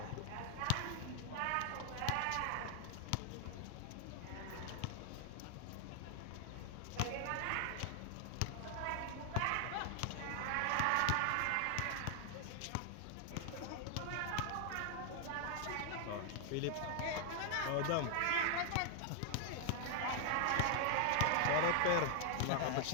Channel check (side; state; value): both; different; correlation 0.00